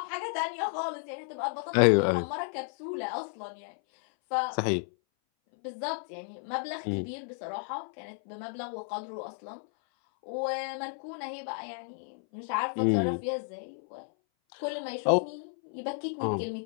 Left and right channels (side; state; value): right; silent; 56 dB below the other